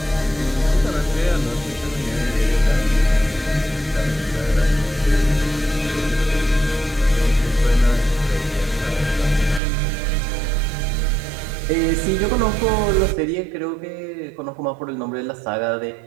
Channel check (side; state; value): left; drops out; at 9.6 s